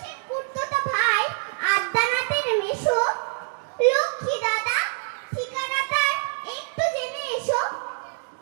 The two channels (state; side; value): silent; left; 62 dB below the other